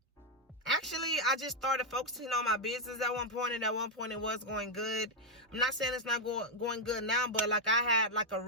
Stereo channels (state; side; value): normal; both; correlation 0.00